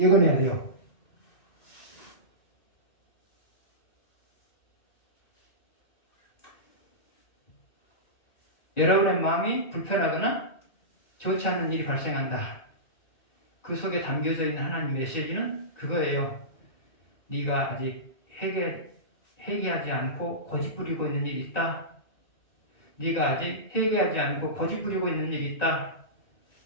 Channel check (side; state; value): right; late; 1.9 ms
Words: 돼요. 여러분의 마음이 불편하거나 좋지 않은 일이 발생한다. 그 속에 담겨져 있는 하나님 메시지는 그거예요. 네가 아직 회개하지 않고 고집 부리고 있는 일이 있다. 네가 아직 회개하지 않고 고집 부리고 있는 일이 있다.